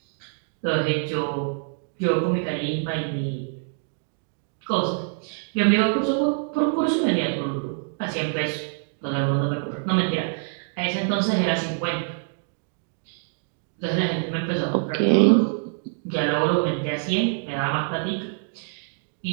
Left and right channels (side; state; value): left; silent; 61 dB below the other